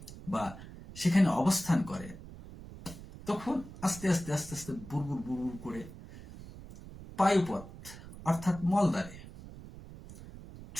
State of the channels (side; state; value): right; noise; rumble, 15 dB below the sound